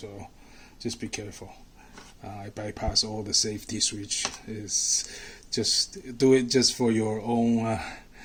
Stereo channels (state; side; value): identical; both; correlation 1.00